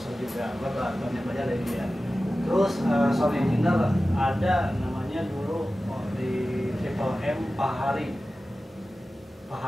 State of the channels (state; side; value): normal; both; correlation 0.95